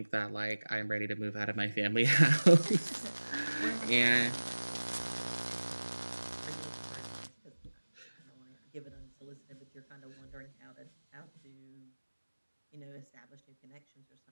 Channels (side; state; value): both; inverted; correlation -1.00